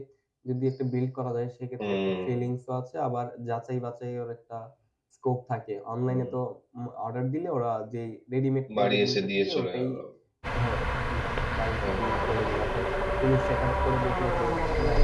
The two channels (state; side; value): identical; both; correlation 1.00